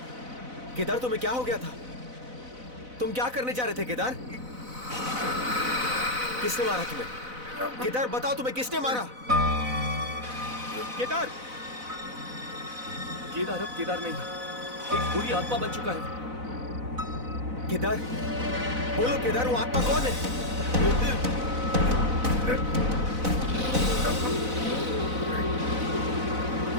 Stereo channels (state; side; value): late; left; 4.0 ms